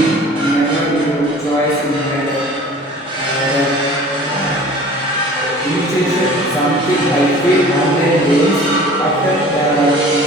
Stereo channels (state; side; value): normal; both; correlation 0.45